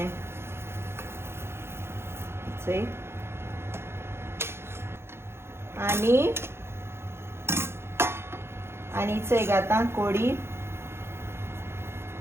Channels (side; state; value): left; late; 0.12 ms